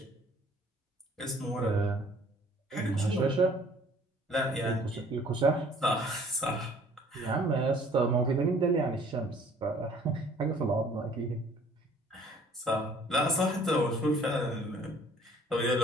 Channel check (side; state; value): both; normal; correlation 0.56